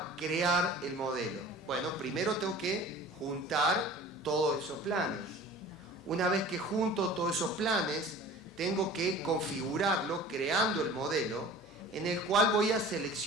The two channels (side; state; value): both; normal; correlation 0.42